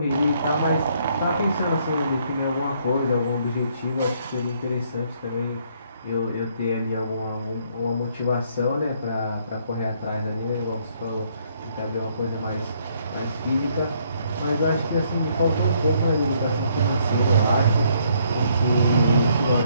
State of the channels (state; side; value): inverted; both; correlation -0.68